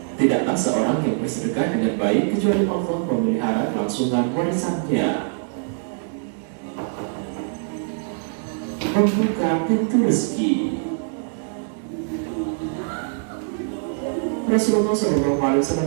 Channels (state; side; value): silent; left; 63 dB below the other